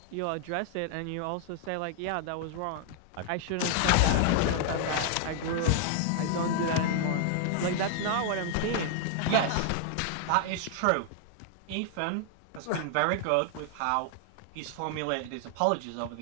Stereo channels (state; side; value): different; both; correlation 0.00